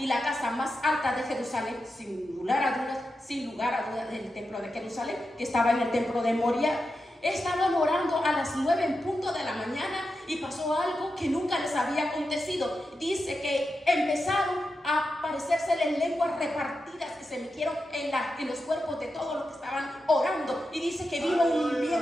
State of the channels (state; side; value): normal; both; correlation 0.89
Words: la casa más alta de Jerusalén, sin lugar a dudas, del templo de Jerusalén, que estaba en el templo de Moria. Estaban orando a las 9 en punto de la mañana y pasó algo que nunca les había acontecido. Dice que empezaron a aparecérseles lenguas repartidas que se metieron en los cuerpos de todos los que estaban orando. Y dice que vino un